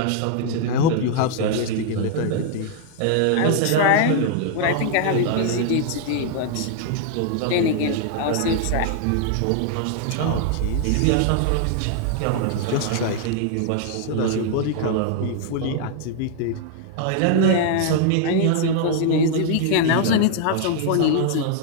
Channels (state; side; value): different; both; correlation 0.00